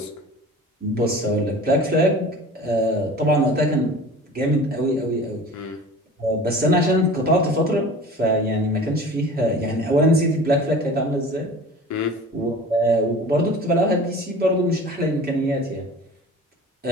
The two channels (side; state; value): both; normal; correlation 0.40